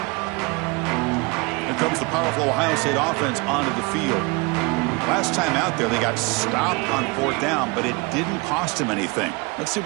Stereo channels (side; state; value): left; quieter; 27.3 dB